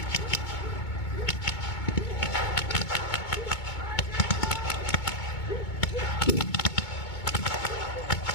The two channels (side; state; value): right; late; 2.2 ms